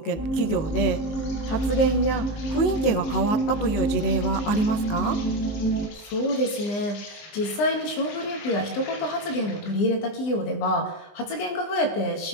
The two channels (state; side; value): late; right; 19 ms